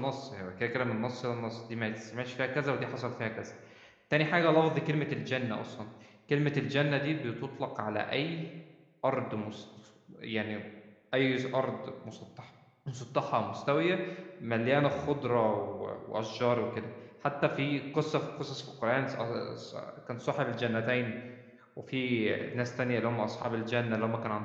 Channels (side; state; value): both; identical; correlation 1.00